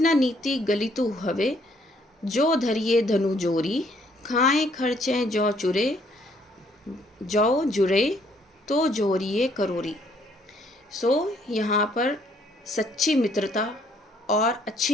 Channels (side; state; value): both; normal; correlation 0.66